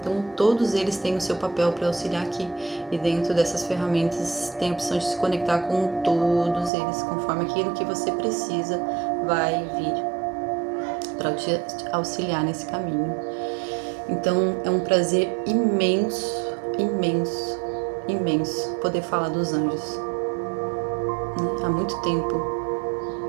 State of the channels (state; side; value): drops out; left; at 6.7 s